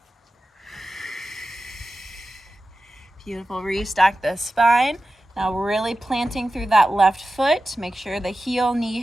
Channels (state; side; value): normal; both; correlation 0.93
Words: Beautiful. Restack the spine. Now really planting through that left foot. Make sure the heel, knee,